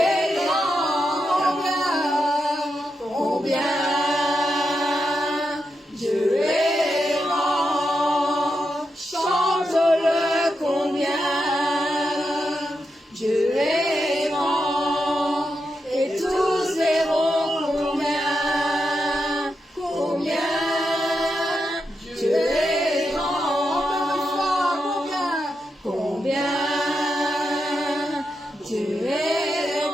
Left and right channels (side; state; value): both; normal; correlation 0.86